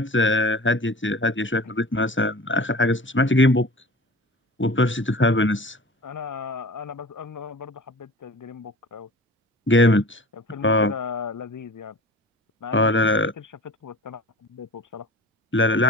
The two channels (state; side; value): normal; both; correlation 0.39